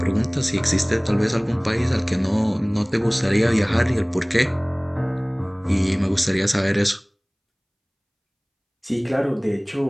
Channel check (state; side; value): identical; both; correlation 1.00